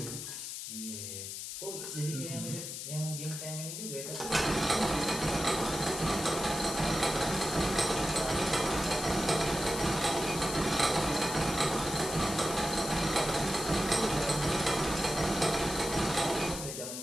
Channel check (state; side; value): noise; left; hiss, 7 dB below the sound